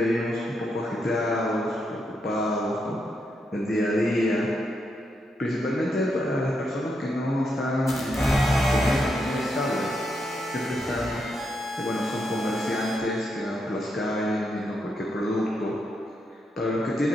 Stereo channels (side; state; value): both; normal; correlation 0.81